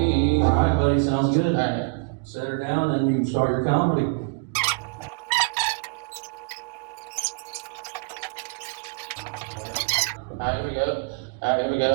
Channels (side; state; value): left; quieter; 32.2 dB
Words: All right, buddy, sounds good. All right. Set her down and you can start your comedy. Alright, here we go.